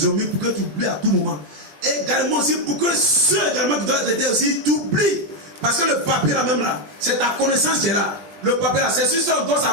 ont mis pour que tu oublies à tout moment. Et également aussi pour que ceux également qui doivent t'aider aussi, tu oublies. Parce que le papier là même là, c'est ta connaissance qui est là. Le papier là, c'est sur ça qu'on doit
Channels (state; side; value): late; left; 20 ms